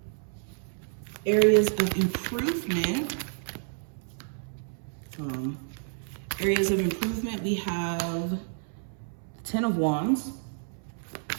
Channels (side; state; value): left; silent; 58 dB below the other